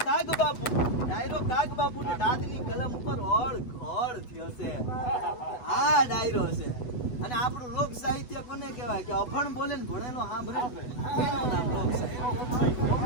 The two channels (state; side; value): late; right; 8.1 ms